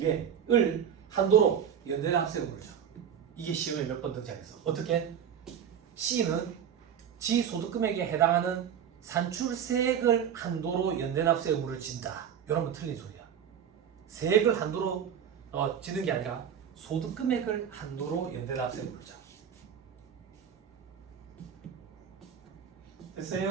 한도로 연대납세 의무를 줘. 이게 시험에 몇 번 등장했어. 어떻게? C는 지 소득금액에 해당하는 산출세액을 한도로 연대납세 의무를 진다. 이러면 틀린 소리야. 세액을 한도로 지는 게 아니라 소득금액을 한도로 연대납세 의무를 줘.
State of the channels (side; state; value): left; quieter; 8.5 dB